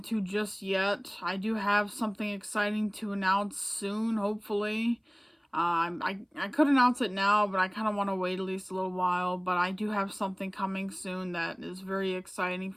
just yet. I do have something exciting to announce soon, hopefully. I could announce it now, but I kind of want to wait at least a little while. But I do have something coming soon that is very exciting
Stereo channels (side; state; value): both; identical; correlation 1.00